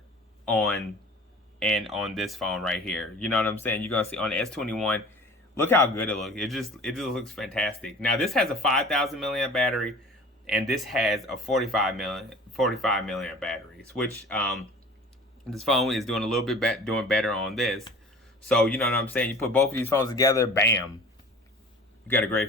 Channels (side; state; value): both; normal; correlation 0.44